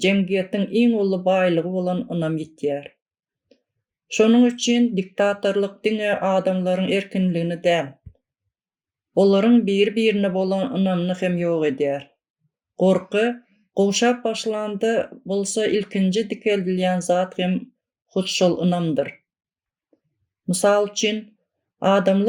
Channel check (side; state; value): both; identical; correlation 1.00